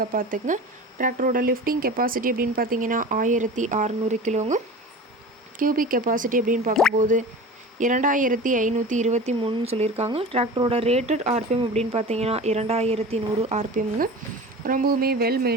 பார்த்துக்குங்க. டிராக்டரோட லிஃப்டிங் கெப்பாசிட்டி அப்படின்னு பார்த்தீங்கன்னா 1600 கிலோங்க. கியூபிக் கெப்பாசிட்டி அப்படின்னு பார்க்கும்போது 2523 சொல்லியிருக்காங்க. டிராக்டரோட ரேட்டட் RPM அப்படின்னு பார்த்தீங்கன்னா 2100 RPMங்க. ரொம்பவுமே வெல்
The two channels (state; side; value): normal; both; correlation 0.35